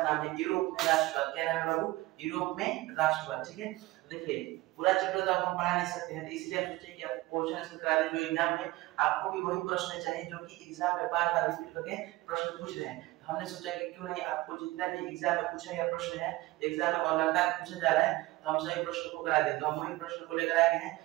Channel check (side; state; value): left; quieter; 19.3 dB